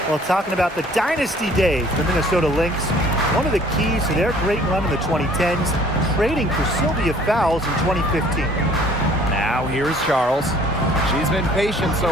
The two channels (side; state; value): both; normal; correlation 0.55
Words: Well, talking about the dynasty days, the Minnesota Lynx, one of the keys to their great run in the 2010s, trading for Sylvia Fowles in 2015. Now here's Charles. She's been patient